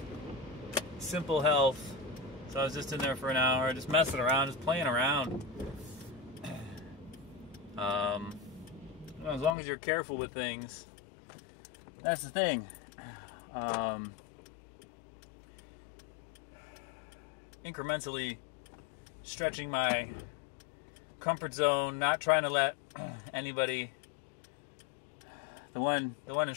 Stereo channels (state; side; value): drops out; right; at 9.6 s